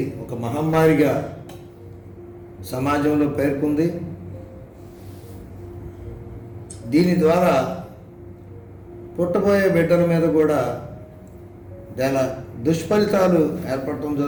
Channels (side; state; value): both; identical; correlation 1.00